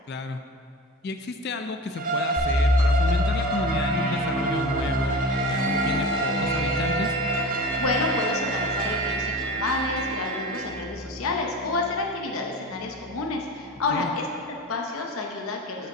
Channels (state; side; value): normal; both; correlation 0.30